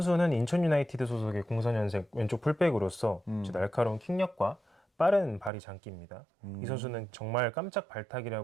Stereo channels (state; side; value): drops out; left; at 5.5 s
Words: 인천 유나이티드 소속의 04년생 왼쪽 풀백으로서 날카로운 킥력과 빠른 발이 장기입니다. 이 선수는 정말 깜짝